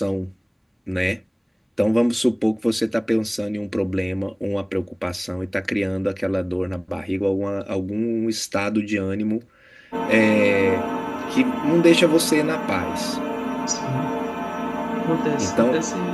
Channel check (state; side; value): identical; both; correlation 1.00